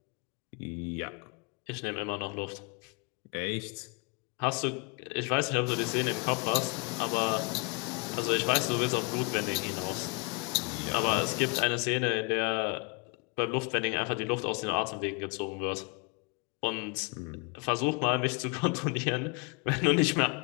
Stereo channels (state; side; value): quieter; right; 32.2 dB